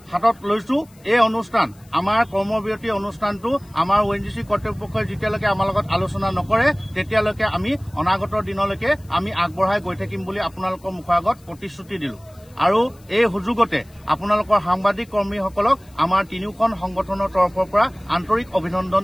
হাতত লৈছো। এই অনুষ্ঠান আমাৰ কৰ্মবিৰতি অনুষ্ঠানটো আমাৰ ONGC কৰ্তৃপক্ষই যেতিয়ালৈকে আমাৰ লগত আলোচনা নকৰে তেতিয়ালৈকে আমি অনাগত দিনলৈকে আমি আগবঢ়াই গৈ থাকিম বুলি আপোনালোকৰ মুখৰ আগত প্ৰতিশ্ৰুতি দিলো। আৰু এই সুযোগতে আপোনালোকৰ সাংবাদিক কৰ্মীসকলক আমাৰ তিনিওখন সংগঠনৰ তৰফৰ পৰা আন্তৰিক অভিনন্দন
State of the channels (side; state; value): left; noise; hiss, 29 dB below the sound